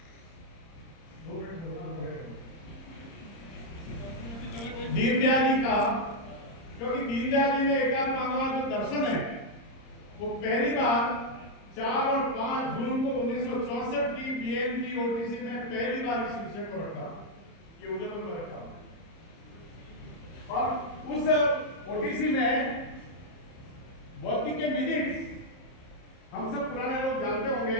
दीनदयाल जी का, क्योंकि दीनदयाल जी ने एकात्म मानववाद जो दर्शन है वो पहली बार 4 और 5 जून को 1964 की बीएनपी ओटीसी में पहली बार इस विषय को रखा, ये उदयपुर में रखा। और उस ओटीसी में बौद्धिक के मिनट्स हम सब पुराने लोग जानते होंगे,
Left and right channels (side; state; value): right; late; 30 ms